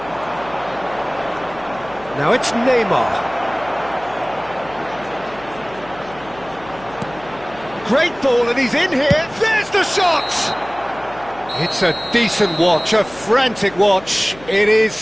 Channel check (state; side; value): noise; left; hum, 20 dB below the sound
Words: Now it's Neymar. Great ball, and he's in here. There's the shot! It's a decent watch, a frantic watch. It